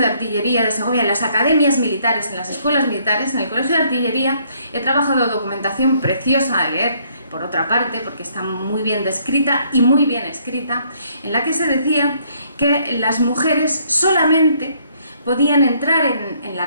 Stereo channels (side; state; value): both; inverted; correlation -0.66